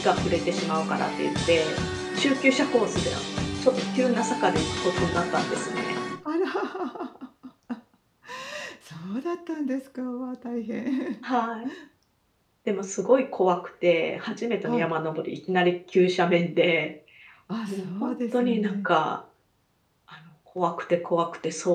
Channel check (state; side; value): identical; both; correlation 1.00